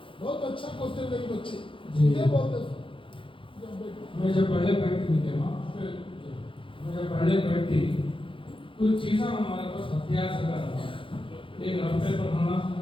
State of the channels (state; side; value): late; right; 0.25 ms